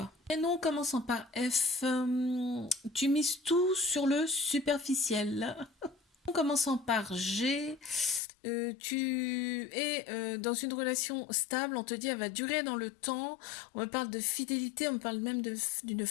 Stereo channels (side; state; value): right; drops out; at 8.2 s